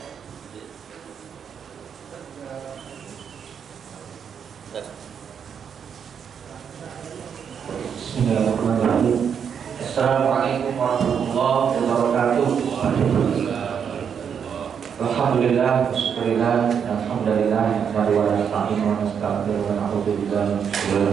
Bismillahirrahmanirrahim. Assalamualaikum warahmatullahi wabarakatuh. Alhamdulillah, syukurillah, alhamdulillah, wa nasta'inu wa nastaghfiru wa na'udzu billahi min shururi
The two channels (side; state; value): left; quieter; 7.4 dB